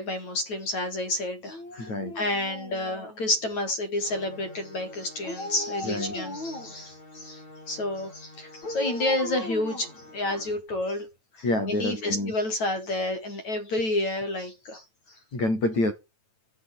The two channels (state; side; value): late; right; 9.1 ms